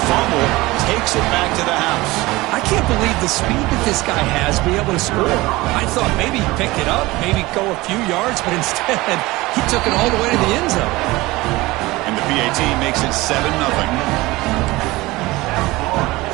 fumble. He's takes it back to the house. I can't believe the speed that this guy has to be able to score. I thought maybe he'd pick it up, maybe go a few yards, but instead he took it all the way to the end zone. And the PAT makes it 7-0.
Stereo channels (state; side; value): quieter; left; 20.3 dB